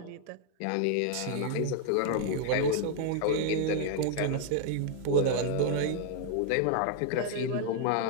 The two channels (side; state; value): both; different; correlation 0.00